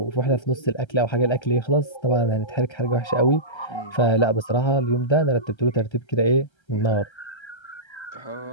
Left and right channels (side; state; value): right; late; 1.3 ms